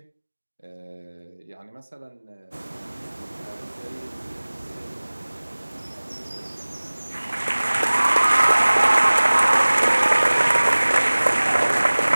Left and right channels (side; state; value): both; inverted; correlation -1.00